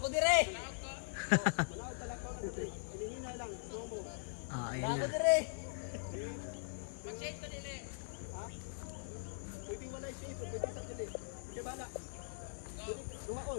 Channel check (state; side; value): silent; right; digital silence